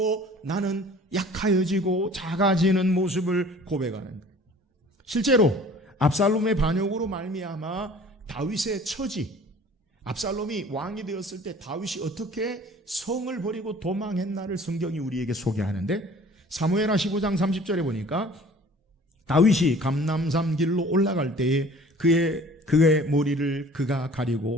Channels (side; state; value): both; normal; correlation 0.49